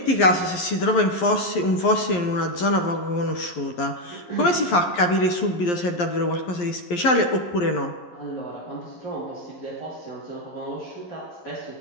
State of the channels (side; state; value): right; late; 11 ms